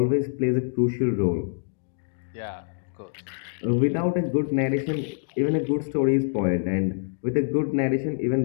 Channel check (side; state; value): right; silent; digital silence